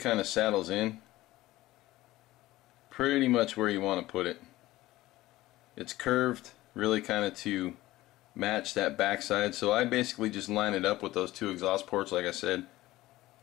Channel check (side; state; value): right; quieter; 17.0 dB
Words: of saddles in pretty much where you want to put it. It's curved really kind of to match that backside, so I basically just line it up with those two exhaust ports like I said